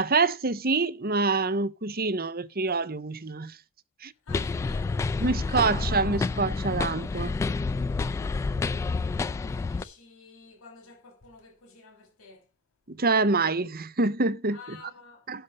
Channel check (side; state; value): both; normal; correlation 0.17